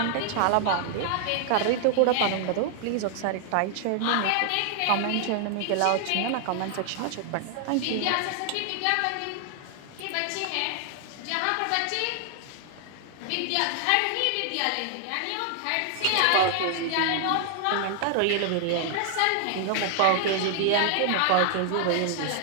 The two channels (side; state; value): both; different; correlation 0.00